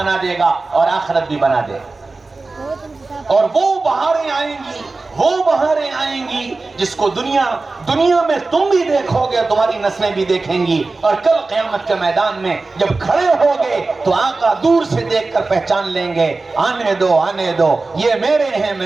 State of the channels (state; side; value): quieter; left; 3.6 dB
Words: دے گا اور آخرت بھی بنا دے گا، اور وہ بہاریں آئیں گی، وہ بہاریں آئیں گی جس کو دنیا میں تم بھی دیکھو گے، تمہاری نسلیں بھی دیکھیں گی، اور کل قیامت کے میدان میں جب کھڑے ہوگے تو آقا دور سے دیکھ کر پہچان لیں گے، آنے دو آنے دو، یہ میرے ہیں